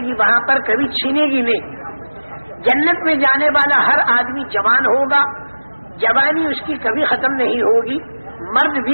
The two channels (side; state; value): both; inverted; correlation -1.00